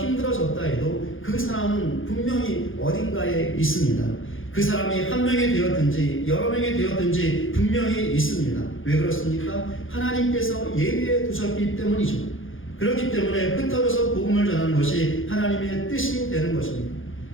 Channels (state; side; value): late; right; 0.58 ms